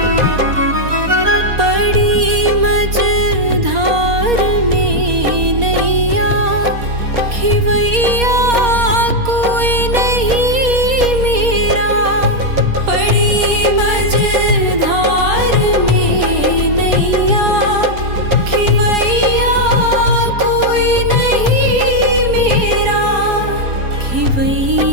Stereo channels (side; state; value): left; late; 4.2 ms